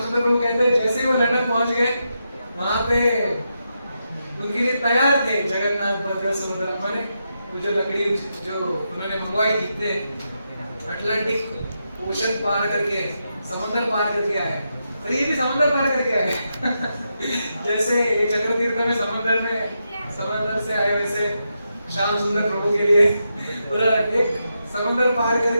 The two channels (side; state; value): both; inverted; correlation -0.85